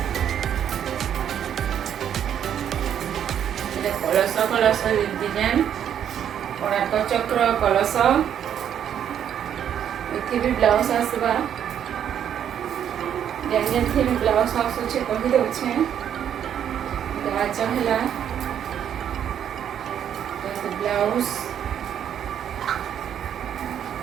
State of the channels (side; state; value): left; quieter; 9.4 dB